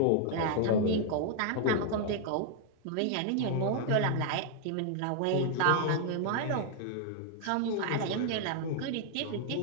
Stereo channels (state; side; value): different; both; correlation 0.00